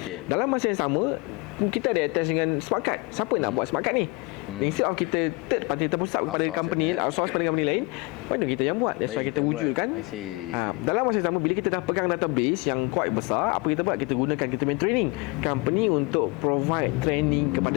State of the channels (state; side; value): quieter; right; 26.2 dB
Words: Dalam masa yang sama kita ada attach dengan smart card. Siapa nak buat smart card ni? Instead of kita third party terpusat kepada company, outsource pada company lain, why not kita yang buat? That's why kita wujudkan. Dalam masa yang sama, bila kita dah pegang database yang quite besar, apa kita buat? Kita gunakan kita main training company untuk provide training